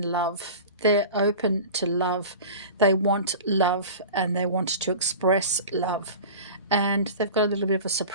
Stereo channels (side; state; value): both; inverted; correlation -0.35